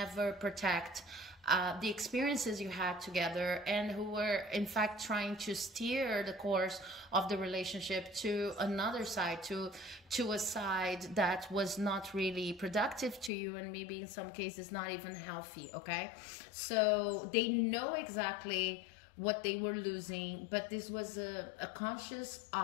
protect the experiences you had together, and who were in fact trying to steer the course of the relationship to another side, to a side that was not really productive to you, and maybe in some cases not even healthy. Okay, so they know exactly what they were losing, but this was a conscious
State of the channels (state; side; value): drops out; right; at 13.3 s